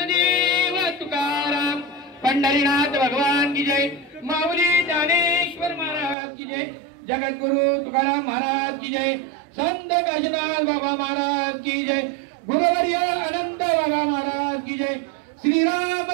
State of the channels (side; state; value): left; drops out; at 6.2 s